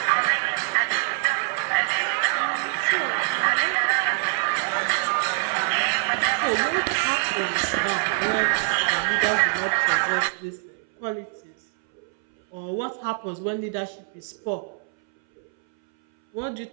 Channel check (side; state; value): left; silent; 62 dB below the other